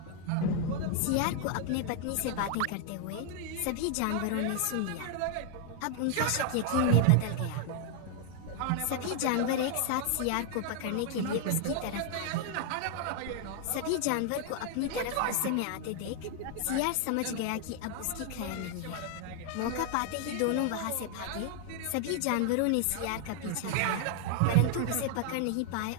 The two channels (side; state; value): both; different; correlation 0.00